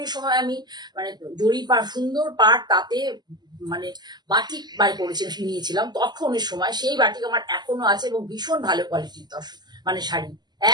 এই সময় আমি মানে জরি পাড়, সুন্দর পাড়, তাতে মানে বাটিক বার করেছি, নিয়েছিলাম তখনের সময়। সেই বাটিক আমার এখনো আছে এবং ভীষণ ভালো কোয়ালিটির মানে শাড়ি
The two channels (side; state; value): left; late; 0.21 ms